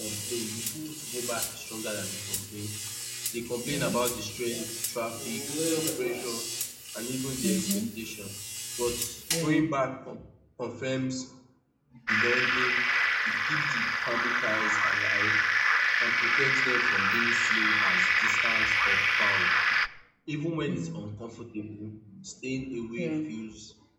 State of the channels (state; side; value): identical; both; correlation 1.00